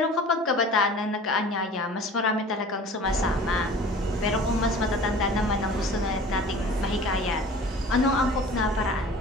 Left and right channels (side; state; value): both; normal; correlation 0.44